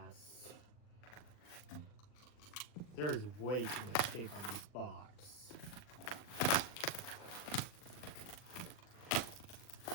There is way too much tape on this box.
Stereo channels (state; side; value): late; right; 39 ms